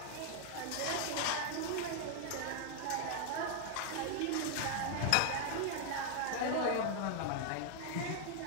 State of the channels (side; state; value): both; different; correlation 0.00